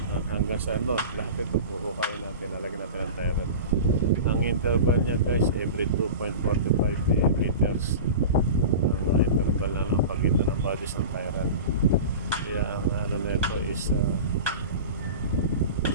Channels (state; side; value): inverted; both; correlation -0.31